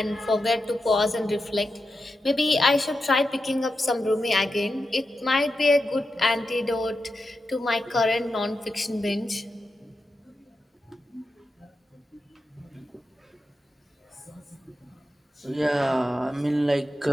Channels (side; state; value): both; normal; correlation 0.89